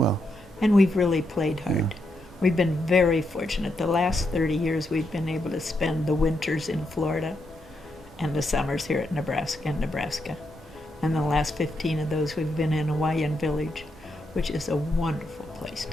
And we've really played hard. We've been very fortunate. The last 30 years we've been able to spend the winters in Florida and the summers here at Nebraska. And the last 15 of those we've been in Lakeside Village, which is a wonderful place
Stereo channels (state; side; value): normal; both; correlation 0.81